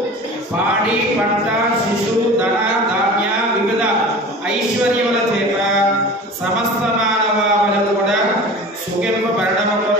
పాడి పంట శిశు ధన ధాన్య వివిధ ఐశ్వర్యముల చేత సమస్త మానవాళులు కూడా సుఖింపబడడం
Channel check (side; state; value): both; normal; correlation 0.38